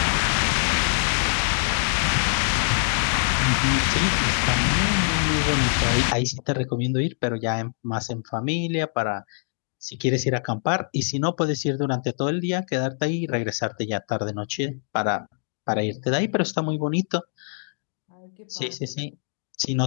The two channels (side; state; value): right; silent; digital silence